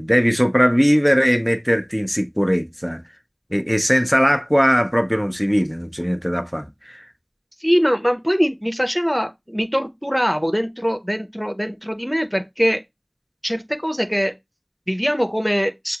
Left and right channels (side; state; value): both; identical; correlation 1.00